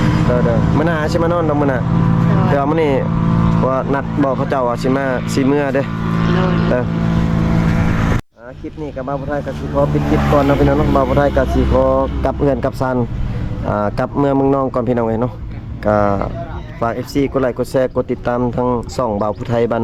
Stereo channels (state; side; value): identical; both; correlation 1.00